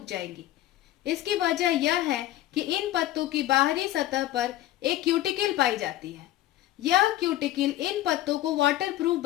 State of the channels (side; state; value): right; quieter; 14.4 dB